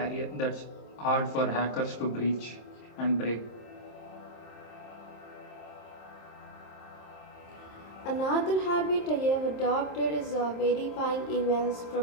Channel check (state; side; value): late; right; 26 ms